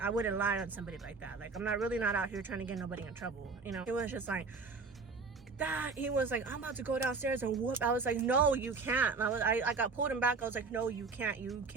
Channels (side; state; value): left; quieter; 4.5 dB